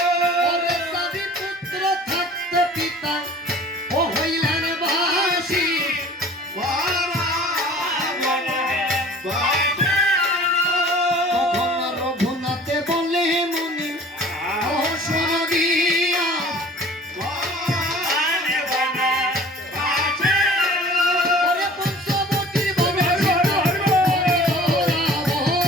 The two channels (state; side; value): normal; both; correlation 0.46